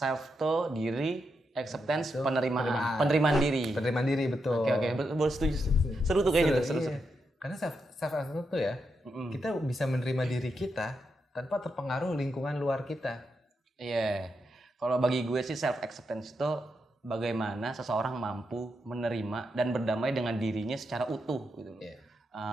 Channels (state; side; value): normal; both; correlation 0.84